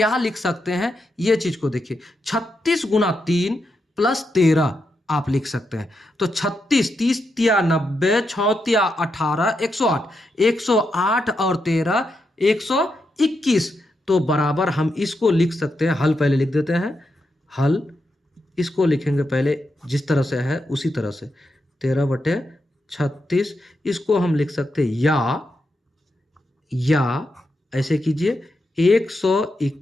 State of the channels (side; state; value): both; normal; correlation 0.84